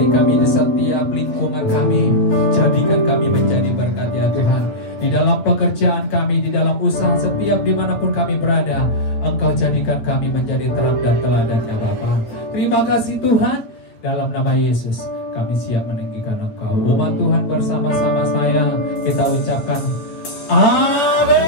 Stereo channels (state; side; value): late; right; 8.9 ms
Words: kami di setiap lingkungan kami, jadikan kami menjadi berkat ya Tuhan. Di dalam pekerjaan kami, di dalam usaha, setiap dimanapun kami berada, Engkau jadikan kami menjadi terang dan teladan ya Bapa. Terima kasih Tuhan. Dalam nama Yesus kami siap meninggikan Engkau. Umat Tuhan bersama-sama saya kita ucapkan